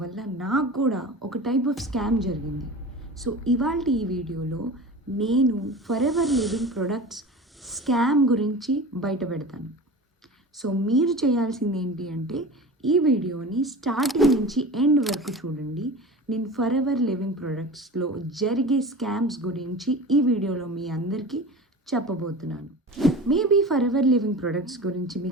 వల్ల నాకు కూడా ఒక టైప్ ఆఫ్ స్కామ్ జరిగింది. సో ఇవాళ ఈ వీడియోలో నేను for ever living products scam గురించి బయట పెడతాను. సో మీరు చేయాల్సింది ఏంటి అంటే ఈ వీడియోని స్టార్టింగ్ నుంచి ఎండ్ వరకు చూడండి. నేను ఫర్ ఎవర్ లివింగ్ ప్రొడక్ట్స్లో జరిగే స్కామ్స్ గురించి ఈ వీడియోలో మీ అందరికీ చెప్పబోతున్నాను. Maybe for ever living products గురించి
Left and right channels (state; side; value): normal; both; correlation 0.34